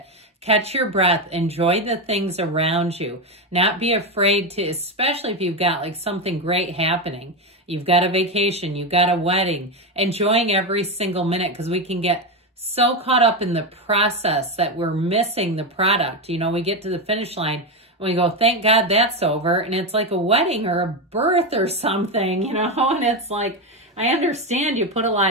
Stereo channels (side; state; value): both; normal; correlation 0.12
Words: Catch your breath, enjoy the things around you. Not be afraid to, especially if you've got like something great happening. You've got a vacation, you've got a wedding, enjoying every single minute, because we can get so caught up in the process that we're missing the product. You know, we get to the finish line and we go, thank God that's over. And it's like a wedding or a birth or something, you know, and it's like, I understand you put a